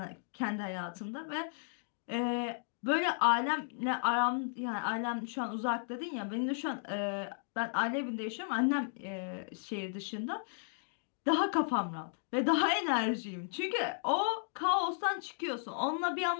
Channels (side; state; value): right; silent; digital silence